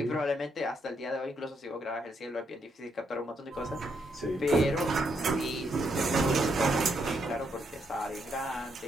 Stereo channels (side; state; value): both; normal; correlation 0.77